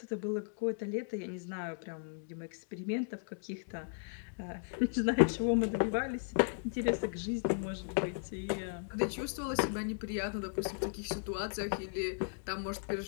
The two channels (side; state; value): right; silent; digital silence